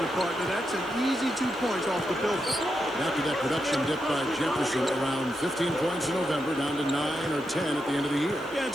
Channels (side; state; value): right; noise; hiss, 27 dB below the sound